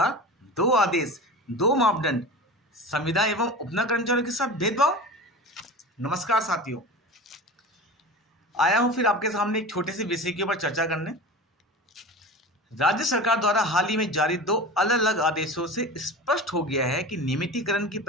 दो आदेश, दो मापदंड, संविदा एवं उपना कर्मचारियों के साथ भेदभाव। नमस्कार साथियों, आया हूं फिर आपके सामने एक छोटे से विषय के ऊपर चर्चा करने। राज्य सरकार द्वारा हाल ही में जारी दो अलग अलग आदेशों से स्पष्ट हो गया है कि नियमितीकरण की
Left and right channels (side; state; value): both; normal; correlation 0.32